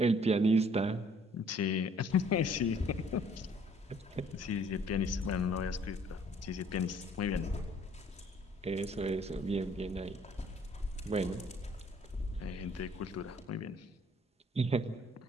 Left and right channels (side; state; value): both; normal; correlation 0.59